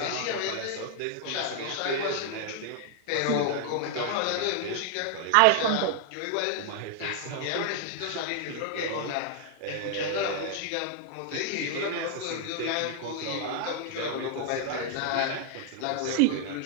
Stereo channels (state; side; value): different; both; correlation 0.00